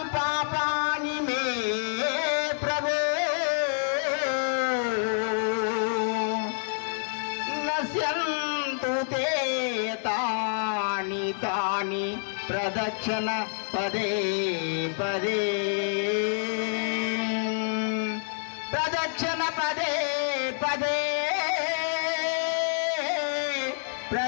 పాపాని మే ప్రభు నశ్యంతు తే తాని తాని ప్రదక్షిణ పదే పదే. ప్రదక్షిణ పదే పదే,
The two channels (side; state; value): right; silent; 60 dB below the other